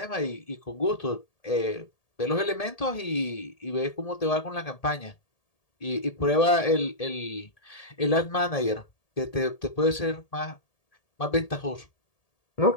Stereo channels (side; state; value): right; late; 1.8 ms